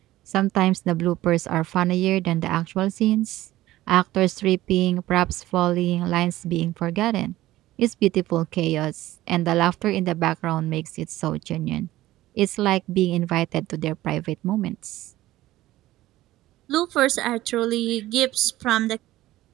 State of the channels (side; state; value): left; quieter; 15.9 dB